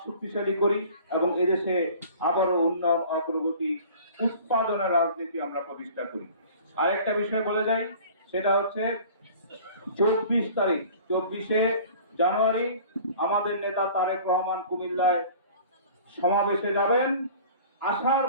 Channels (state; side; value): inverted; both; correlation -0.46